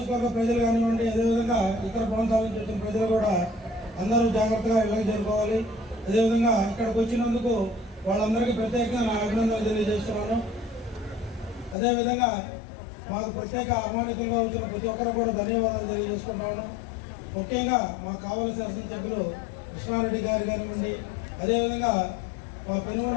ప్రజలు కానివ్వండి, అదేవిధంగా ఇతర ప్రాంతాల నుంచి వచ్చిన ప్రజలు కూడా అందరూ జాగ్రత్తగా ఇళ్ళకి చేరుకోవాలి. అదేవిధంగా ఇక్కడికి వచ్చినందుకు వాళ్ళందరికీ ప్రత్యేకంగా నా అభినందనలు తెలియజేస్తున్నాను. అదేవిధంగా మాకు ప్రత్యేక ఆహ్వానితులుగా వచ్చిన ప్రతి ఒక్కరు కూడా ధన్యవాదాలు తెలియజేసుకుంటున్నాను. ముఖ్యంగా మా కావలి శాసనసభ్యులు కృష్ణారెడ్డి గారు కానివ్వండి, అదేవిధంగా మా పెనుగొండ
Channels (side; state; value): right; drops out; at 11.8 s